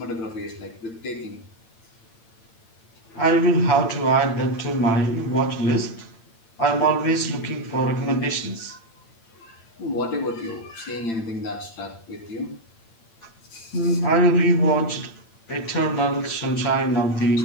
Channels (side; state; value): right; late; 8.9 ms